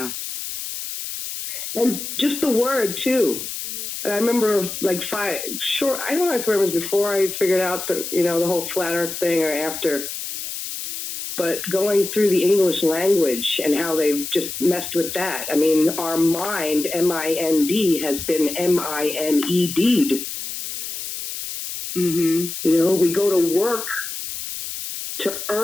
And just the word, too. I remember, like, I don't know if it was before I figured out the whole flat earth thing or after, but going through the English language and how they've just messed with that. I mean, our mind, M-I-N-D, has been M-I-N-E-D'd. Mm-hmm. You know, we go to work to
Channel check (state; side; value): noise; left; hiss, 7 dB below the sound